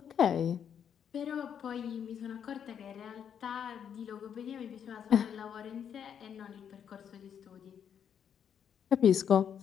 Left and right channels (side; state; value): right; quieter; 8.3 dB